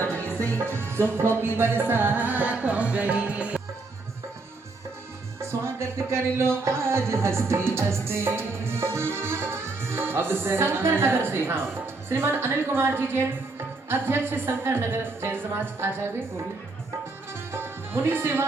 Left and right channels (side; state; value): left; quieter; 3.5 dB